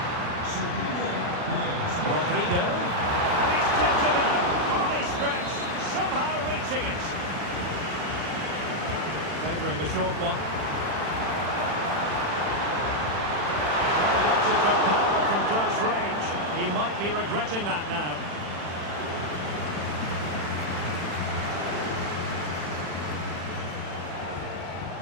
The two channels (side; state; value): left; late; 40 ms